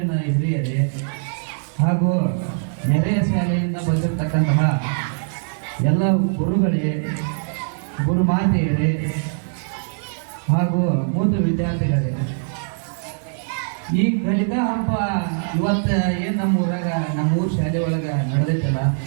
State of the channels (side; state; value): left; silent; digital silence